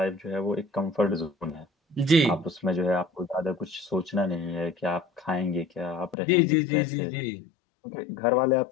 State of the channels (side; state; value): right; drops out; at 6.2 s